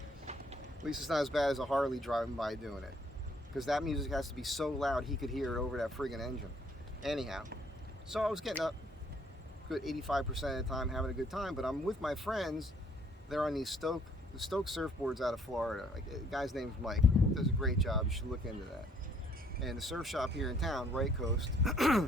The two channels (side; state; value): both; normal; correlation 0.64